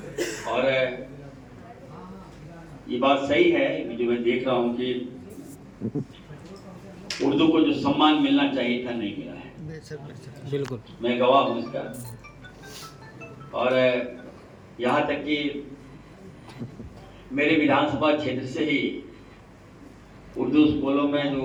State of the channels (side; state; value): both; identical; correlation 1.00